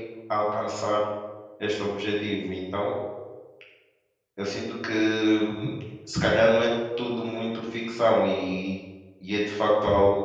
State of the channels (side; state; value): both; identical; correlation 1.00